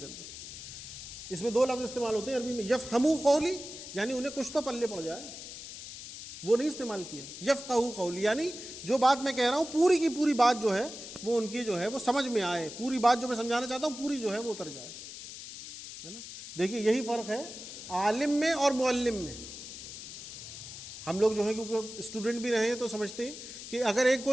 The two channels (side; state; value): left; noise; hiss, 11 dB below the sound